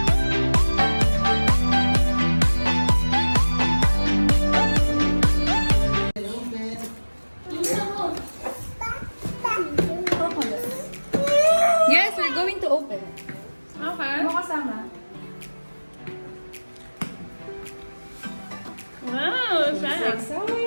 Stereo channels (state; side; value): inverted; both; correlation -1.00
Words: Yes, we're going to open. Okay. Ano kasama? Wow, Isaiah.